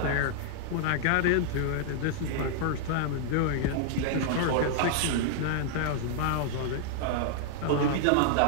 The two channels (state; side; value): different; both; correlation -0.01